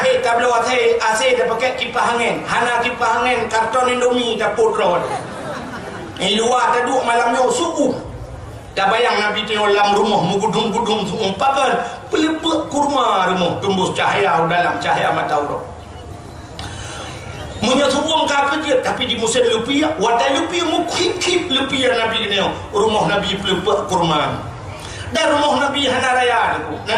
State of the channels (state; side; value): identical; both; correlation 1.00